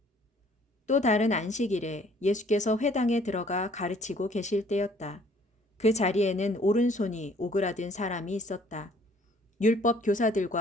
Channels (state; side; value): normal; both; correlation 0.58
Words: 또 다른 안식일에 예수께서 회당에 들어가 가르치고 계실 때였다. 그 자리에는 오른손이 오그라든 사람이 있었다. 율법